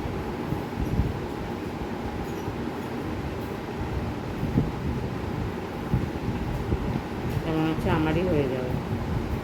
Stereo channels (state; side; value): identical; both; correlation 1.00